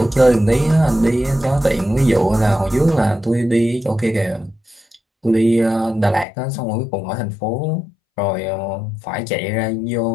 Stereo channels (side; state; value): right; drops out; at 6.2 s